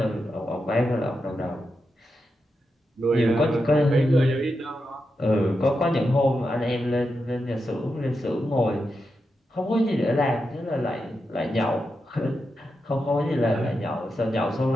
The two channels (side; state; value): both; normal; correlation 0.87